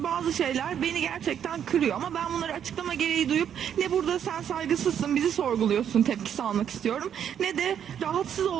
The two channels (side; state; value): left; quieter; 9.0 dB